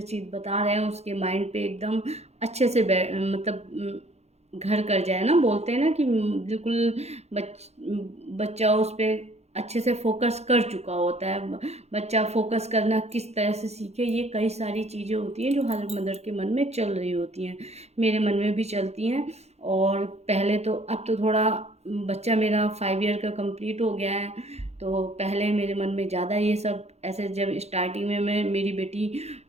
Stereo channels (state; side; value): late; left; 0.31 ms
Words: चीज़ बता रहे हैं उसके माइंड पे एकदम अच्छे से मतलब घर कर जाए ना, बोलते हैं ना कि बिल्कुल बच्चा उस पर अच्छे से फोकस कर चुका होता है। बच्चा फोकस करना किस तरह से सीखे, ये कई सारी चीज़ें होती हैं जो हर मदर के मन में चल रही होती हैं, मेरे मन में भी चलती हैं। और पहले तो, अब तो थोड़ा बच्चा मेरा 5 ईयर का कंप्लीट हो गया है, तो पहले मेरे मन में ज़्यादा ये सब ऐसे, जब स्टार्टिंग में मेरी बेटी